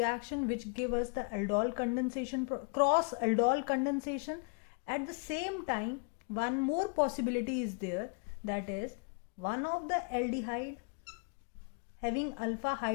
which give us the aldol condensation, cross aldol condensation. At the same time, one more possibility is there, that is one of the aldehyde having alpha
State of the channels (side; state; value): right; quieter; 36.4 dB